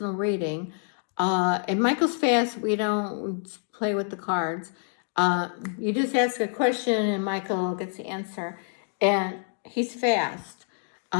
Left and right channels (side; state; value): right; silent; 60 dB below the other